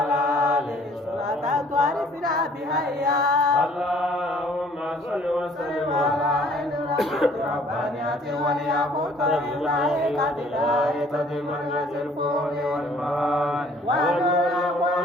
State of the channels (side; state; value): both; normal; correlation 0.57